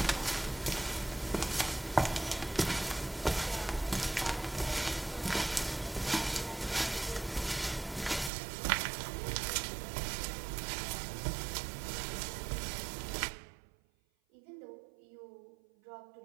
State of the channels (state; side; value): drops out; left; at 8.3 s